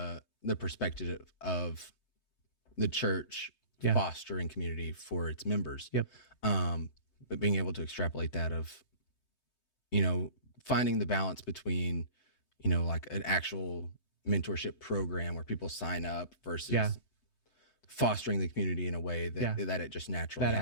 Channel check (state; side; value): late; right; 3.2 ms